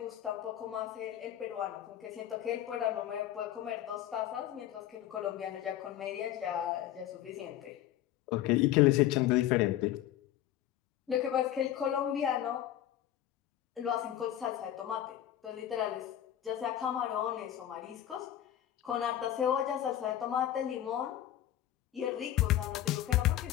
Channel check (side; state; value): right; quieter; 12.1 dB